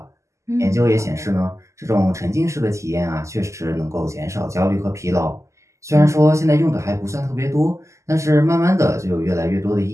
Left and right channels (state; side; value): late; left; 0.14 ms